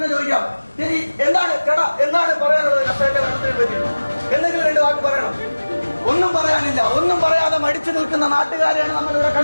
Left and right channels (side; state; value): both; inverted; correlation -1.00